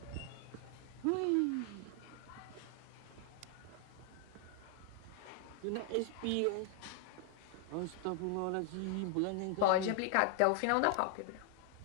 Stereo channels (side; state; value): both; different; correlation 0.00